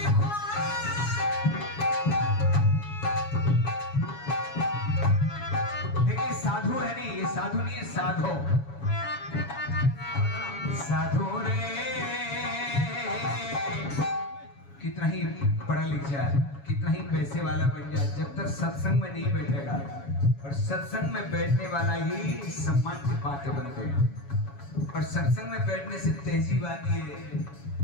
घोर। देखिए साधु है नहीं, ये साधु नहीं है, साधो। साधु रे कितना ही पढ़ा लिख जाए, कितना ही पैसे वाला बन जाए, जब तक सत्संग में नहीं बैठेगा, और सत्संग में बैठने वाला ही सम्मान की पात्र बनते हैं। और सत्संग में बैठने से तहजीब आती है,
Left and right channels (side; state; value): right; late; 7.2 ms